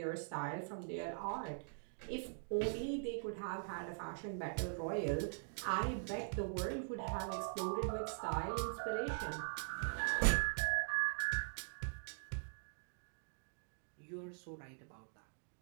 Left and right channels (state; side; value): silent; left; digital silence